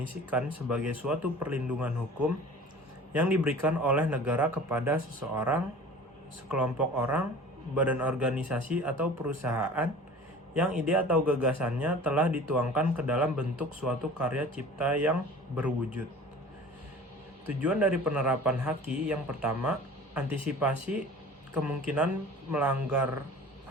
sebagai suatu perlindungan hukum yang diberikan oleh negara kepada seseorang, sekelompok orang, badan organisasi atau perusahaan yang ide atau gagasannya telah dituangkan ke dalam bentuk suatu karya cipta yang berwujud. Tujuan dari penerapan haki yang pertama, antisipasi kemungkinan melanggar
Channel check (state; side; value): normal; both; correlation 0.42